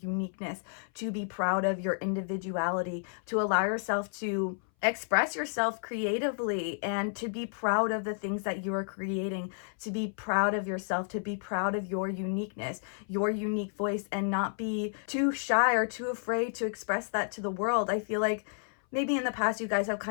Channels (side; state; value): right; silent; 57 dB below the other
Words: to be proud of your individuality, to allow yourself to express yourself creatively and to be proud of the things that you are creating, to be proud of yourself, to be proud of your uniqueness, your unique voice, and not be too shy or too afraid to express that to the world. I feel like maybe in the past you guys have